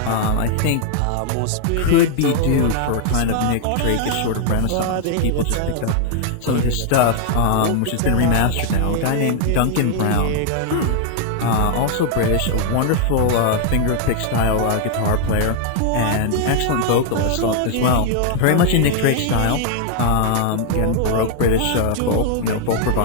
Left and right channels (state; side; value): different; both; correlation 0.00